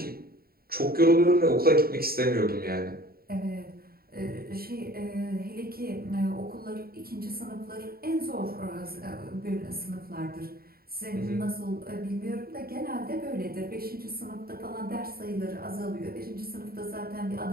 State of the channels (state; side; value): late; left; 0.44 ms